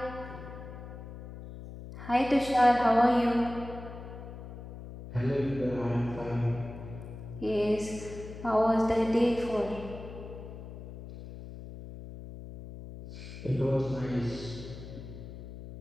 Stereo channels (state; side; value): noise; left; hum, 12 dB below the sound